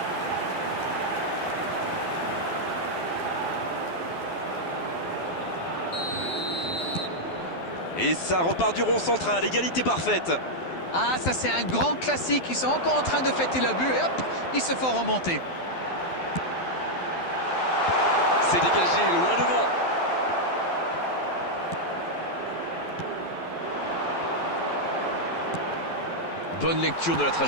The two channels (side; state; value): right; late; 12 ms